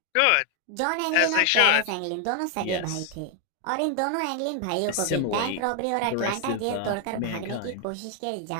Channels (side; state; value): both; different; correlation 0.00